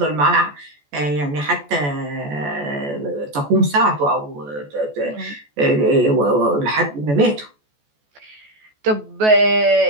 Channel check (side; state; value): left; late; 14 ms